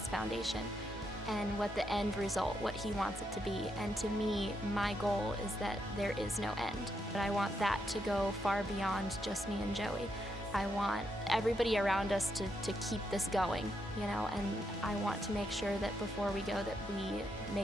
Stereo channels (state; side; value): normal; both; correlation 0.80